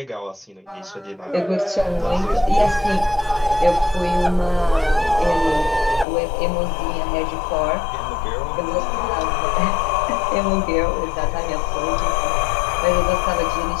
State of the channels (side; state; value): right; drops out; at 6.1 s